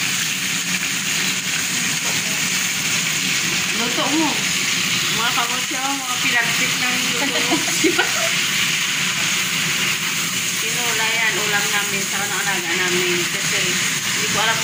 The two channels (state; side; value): identical; both; correlation 1.00